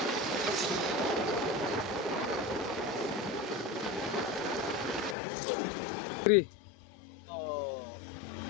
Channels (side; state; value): right; drops out; at 5.2 s